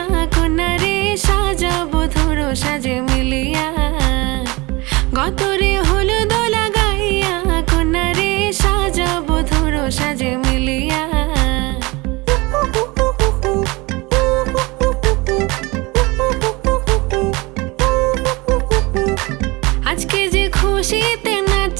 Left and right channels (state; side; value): quieter; left; 24.0 dB